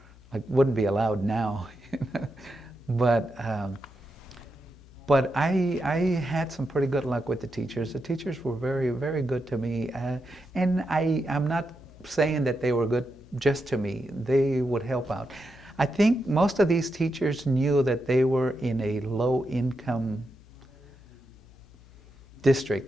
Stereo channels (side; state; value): left; noise; hum, 23 dB below the sound